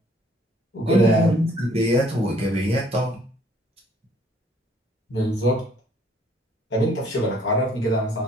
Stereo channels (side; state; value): both; normal; correlation 0.60